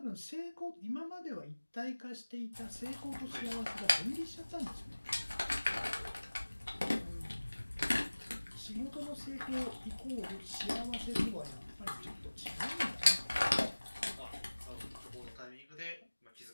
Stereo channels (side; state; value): both; inverted; correlation -1.00